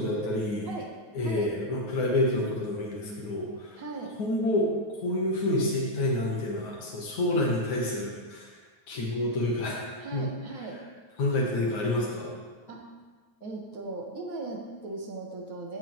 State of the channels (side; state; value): right; late; 9.3 ms